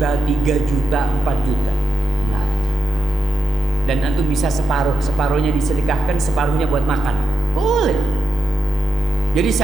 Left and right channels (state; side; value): normal; both; correlation 0.86